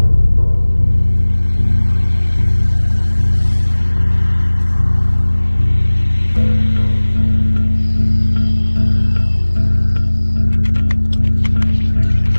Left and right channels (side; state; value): both; inverted; correlation -1.00